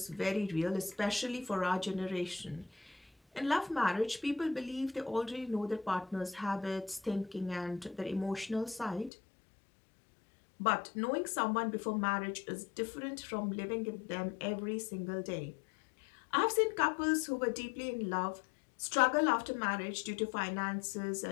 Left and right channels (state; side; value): drops out; right; at 9.1 s